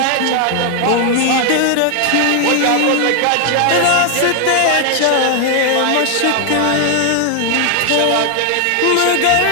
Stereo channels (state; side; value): different; both; correlation 0.00